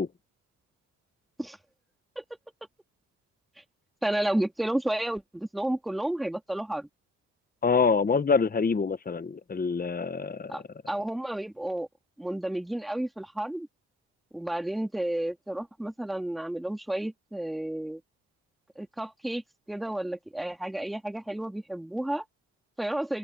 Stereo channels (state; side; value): normal; both; correlation 0.63